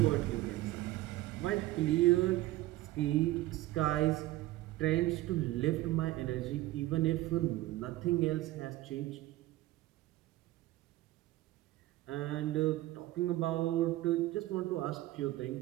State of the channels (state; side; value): quieter; left; 16.9 dB